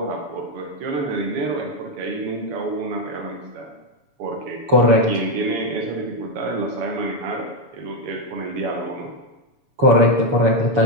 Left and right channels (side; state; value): left; late; 7.1 ms